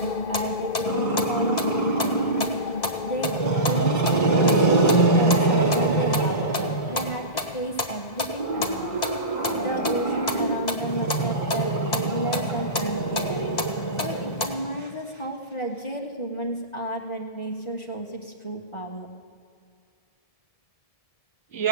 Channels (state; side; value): late; right; 2.0 ms